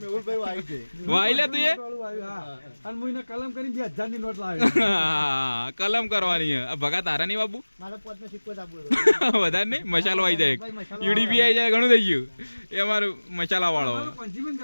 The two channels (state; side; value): inverted; both; correlation -1.00